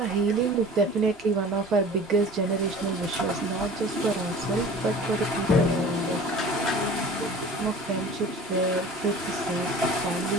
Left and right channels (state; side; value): normal; both; correlation 0.42